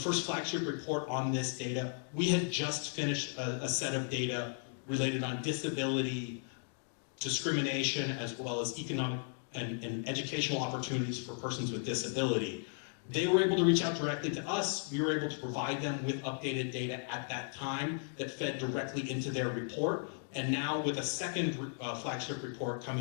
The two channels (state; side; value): silent; right; 54 dB below the other